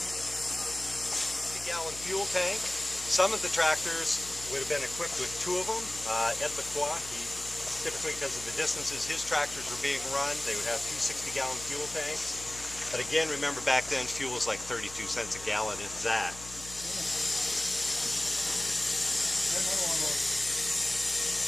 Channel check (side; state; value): left; noise; hum, 16 dB below the sound